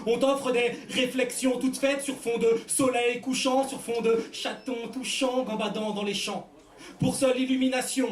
On t'offre des réflexions toutes faites sur fond de soleil couchant, sur fond de chatons touchants gambadant dans les champs. Pour seule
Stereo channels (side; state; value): both; identical; correlation 1.00